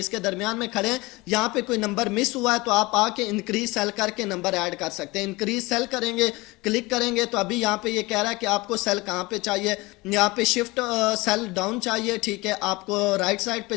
दरमियान में खड़े हैं, यहाँ पे कोई नंबर मिस हुआ है तो आप आके इंक्रीज सेल करके नंबर ऐड कर सकते हैं। इंक्रीज सेल करेंगे, क्लिक करेंगे तो अभी यहाँ पे ये कह रहा है कि आपको सेल कहाँ पे चाहिए। यहाँ पे शिफ्ट सेल डाउन चाहिए, ठीक है, आपको राइट साइड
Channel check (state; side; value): quieter; right; 22.7 dB